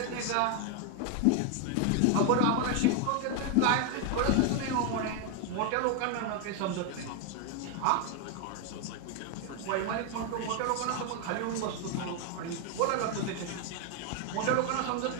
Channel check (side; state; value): both; different; correlation 0.01